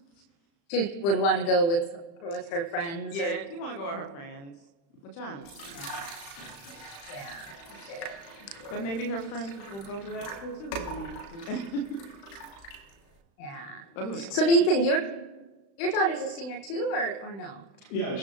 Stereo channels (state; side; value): late; right; 35 ms